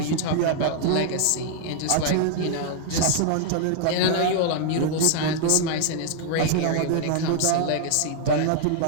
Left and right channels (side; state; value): both; different; correlation 0.00